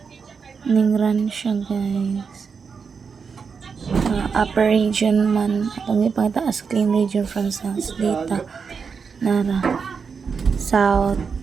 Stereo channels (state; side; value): quieter; left; 5.7 dB